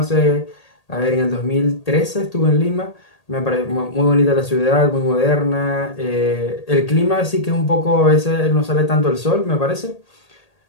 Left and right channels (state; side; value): late; right; 1.8 ms